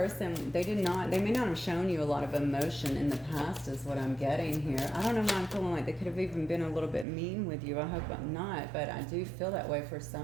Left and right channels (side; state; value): left; drops out; at 7.1 s